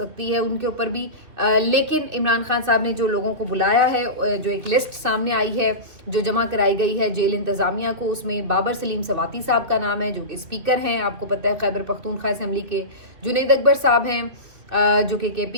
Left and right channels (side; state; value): left; late; 2.6 ms